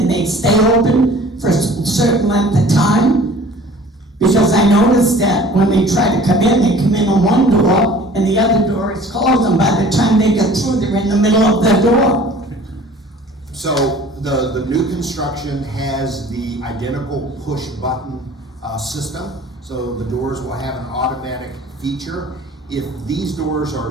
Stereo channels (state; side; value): normal; both; correlation 0.48